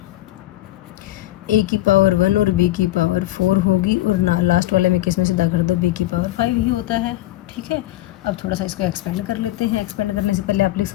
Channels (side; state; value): right; quieter; 16.0 dB